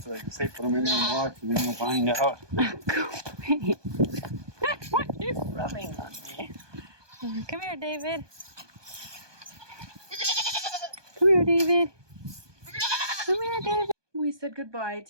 they can say put them in there and watch and then we'll find out. Go away. What are you rubbing on me? Come here, David. Come here, David. Come here, David. We said goodbye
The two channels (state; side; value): late; left; 1.2 ms